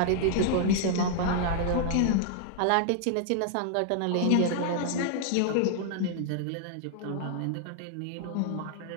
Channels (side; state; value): both; different; correlation -0.01